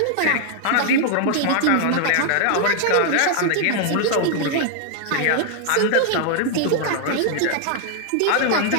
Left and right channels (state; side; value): different; both; correlation 0.00